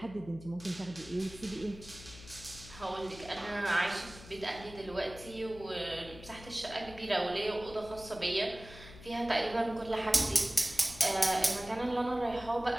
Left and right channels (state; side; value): noise; left; hum, 17 dB below the sound